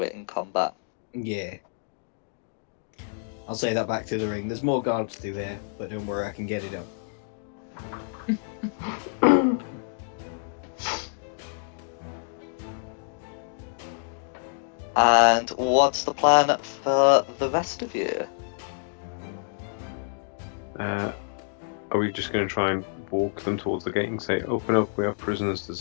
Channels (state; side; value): silent; right; digital silence